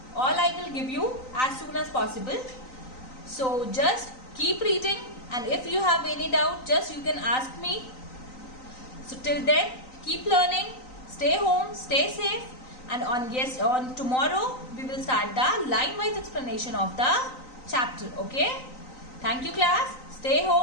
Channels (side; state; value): right; late; 3.9 ms